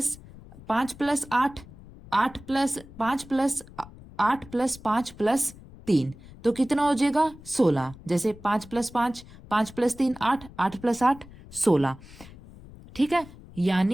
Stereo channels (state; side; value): noise; left; rumble, 19 dB below the sound